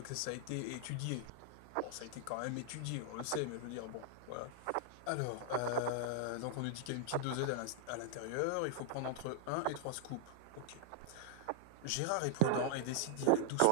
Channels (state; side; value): different; both; correlation -0.01